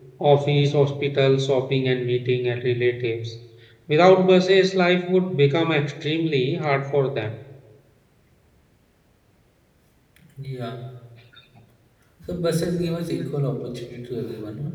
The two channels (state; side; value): identical; both; correlation 1.00